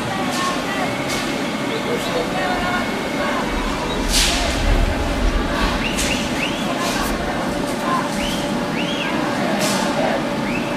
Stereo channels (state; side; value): identical; both; correlation 1.00